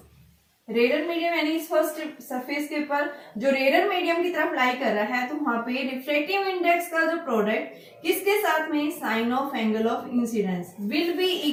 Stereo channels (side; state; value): both; identical; correlation 1.00